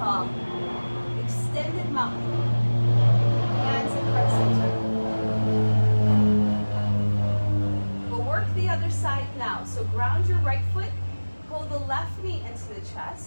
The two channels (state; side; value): inverted; both; correlation -1.00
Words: Extended mountain. Hands at heart center. We'll work the other side now. So ground your right foot. Pull the left knee into the